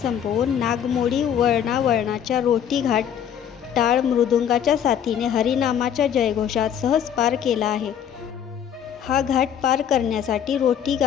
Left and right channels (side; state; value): right; quieter; 8.9 dB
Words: संपवून नागमोडी वळणावळणाच्या रोटी घाट टाळ मृदुंगाच्या साथीने हरिनामाच्या जयघोषात सहज पार केला आहे. हा घाट पार करण्यासाठी रोटी